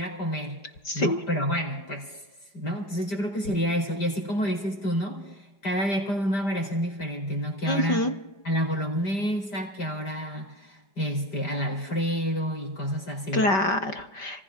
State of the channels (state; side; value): late; right; 5.0 ms